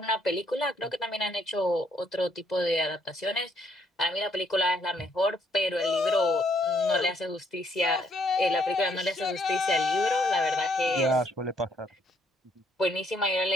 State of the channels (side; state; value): both; normal; correlation 0.69